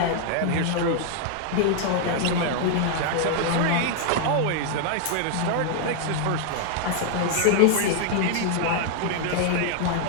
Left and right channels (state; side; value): different; both; correlation 0.00